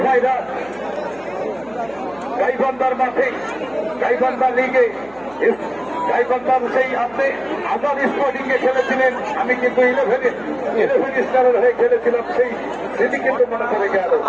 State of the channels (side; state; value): right; noise; hum, 26 dB below the sound